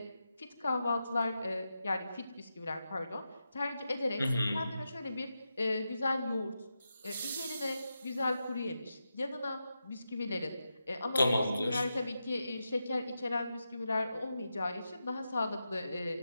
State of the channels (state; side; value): inverted; both; correlation -0.89